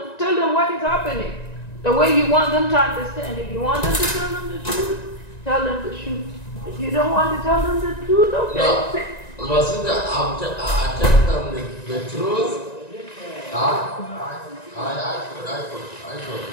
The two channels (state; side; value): late; right; 1.9 ms